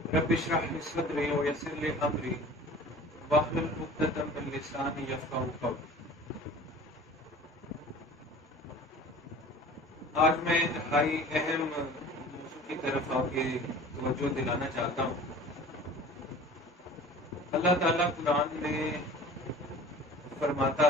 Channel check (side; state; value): both; normal; correlation 0.43